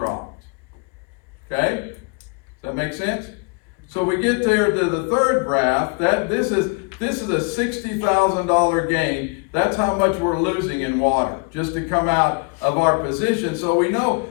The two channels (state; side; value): quieter; right; 34.1 dB